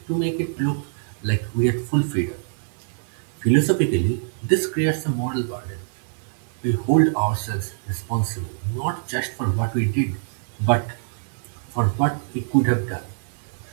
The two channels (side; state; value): left; silent; digital silence